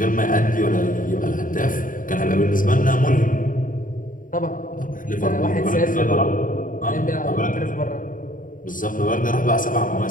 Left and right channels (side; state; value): right; late; 0.39 ms